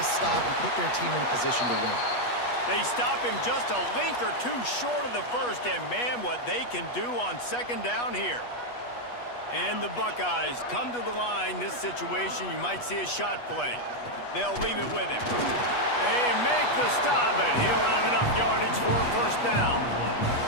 stop, and put their team in a position to win. They stop him just a link or two short of the first, and man, what they can do on second down here. And the Buckeyes come to the line. This situation, you might see a shot play. They'll leave it with him. They make the stop, and he'll have enough yardage for a first down.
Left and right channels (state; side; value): late; right; 8.3 ms